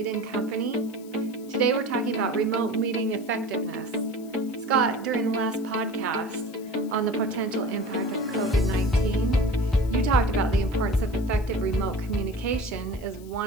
& Company. Today we're talking about remote meeting effectiveness. Scott, during the last podcast on the potential impact of COVID-19, you talked about the importance of effective remote communication as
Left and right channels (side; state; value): left; noise; hiss, 23 dB below the sound